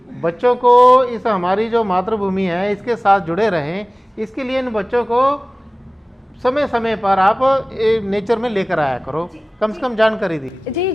बच्चों को इस हमारी जो मातृभूमि है इसके साथ जुड़े रहें, इसके लिए इन बच्चों को समय समय पर आप नेचर में लेकर आया करो, कम से कम जानकारी दी। जी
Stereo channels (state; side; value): normal; both; correlation 0.98